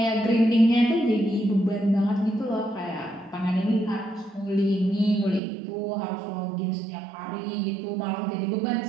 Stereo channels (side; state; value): left; drops out; at 5.4 s